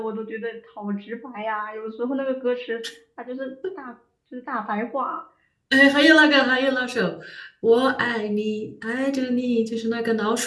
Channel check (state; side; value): identical; both; correlation 1.00